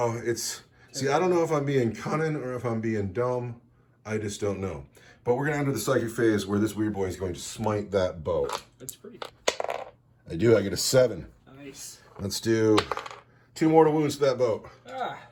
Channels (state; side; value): identical; both; correlation 1.00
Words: see, I don't know if I'm being cunning or if I'm being dumb. I just don't know. But we're going to enter the psychic phase where this Weird Boy is going to smite that boat. That's pretty. I do. I get a 7. Nice. Let's do 2 mortal wounds to that boat.